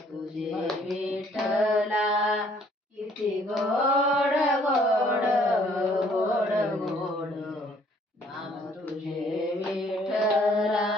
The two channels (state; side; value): normal; both; correlation 0.61